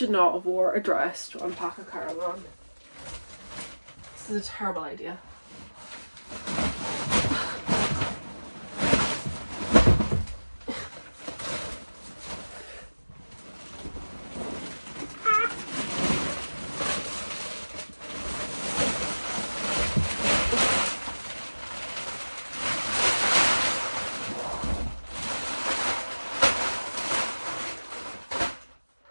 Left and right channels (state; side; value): inverted; both; correlation -1.00